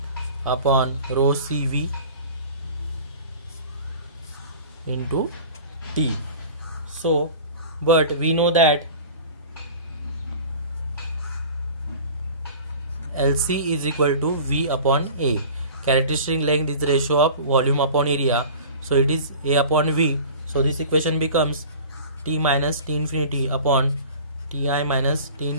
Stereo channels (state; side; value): inverted; both; correlation -0.40